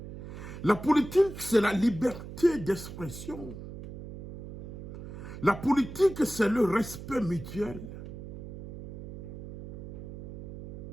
La politique, c'est la liberté d'expression. La politique, c'est le respect mutuel.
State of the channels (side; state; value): right; noise; hum, 12 dB below the sound